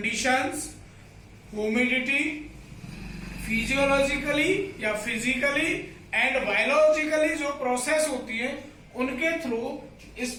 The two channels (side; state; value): both; identical; correlation 1.00